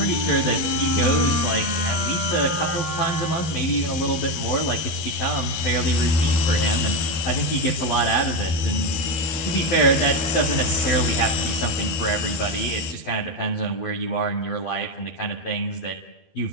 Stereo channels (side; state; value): right; late; 13 ms